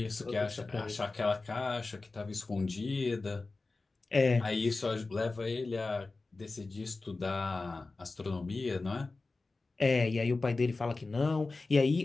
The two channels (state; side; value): quieter; right; 3.6 dB